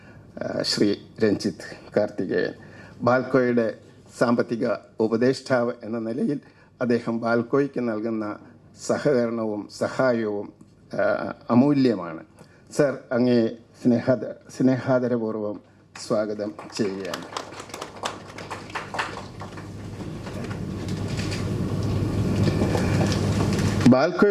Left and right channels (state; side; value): identical; both; correlation 1.00